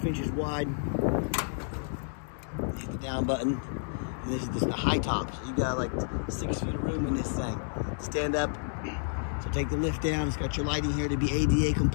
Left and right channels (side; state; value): right; silent; digital silence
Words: inches wide. Hit the down button. And this is just the high top. So you got like 6 feet of room in this thing. Stand up. So take the lift down. It's got your lighting here to be ADA